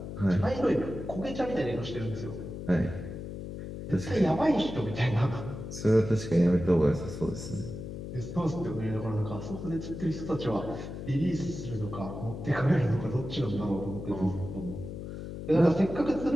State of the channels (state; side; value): noise; left; hum, 8 dB below the sound